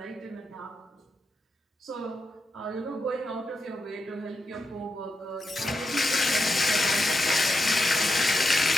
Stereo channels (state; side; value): normal; both; correlation 0.86